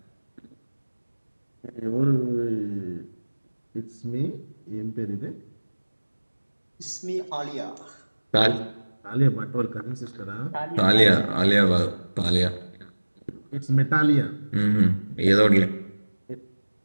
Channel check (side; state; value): both; inverted; correlation -1.00